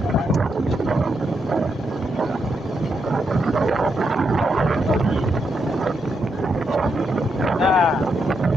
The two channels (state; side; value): normal; both; correlation 0.81